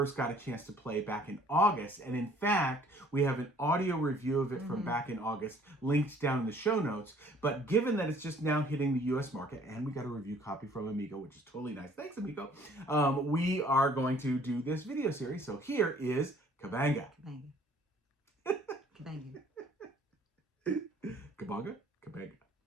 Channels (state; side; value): normal; both; correlation 0.57